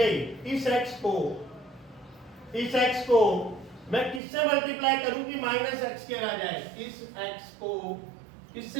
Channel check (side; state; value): left; drops out; at 4.2 s